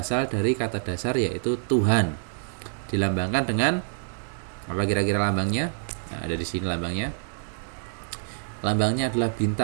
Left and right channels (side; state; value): left; silent; digital silence